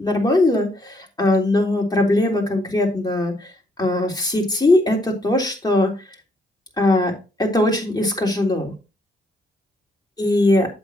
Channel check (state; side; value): normal; both; correlation 0.71